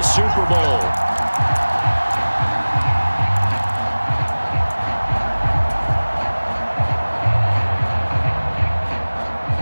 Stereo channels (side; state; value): both; inverted; correlation -1.00